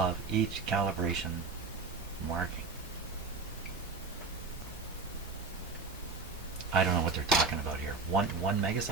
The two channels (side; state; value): left; quieter; 4.3 dB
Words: each calibration marking. I don't know what they're talking about here. One